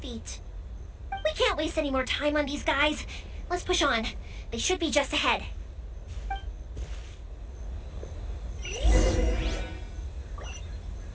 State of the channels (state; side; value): identical; both; correlation 1.00